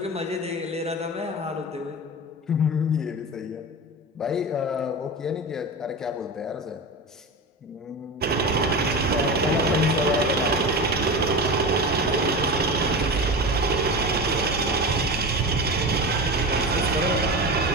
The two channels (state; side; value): normal; both; correlation 0.26